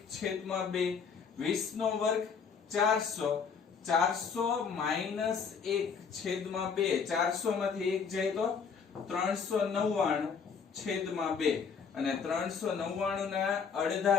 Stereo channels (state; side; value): quieter; right; 6.0 dB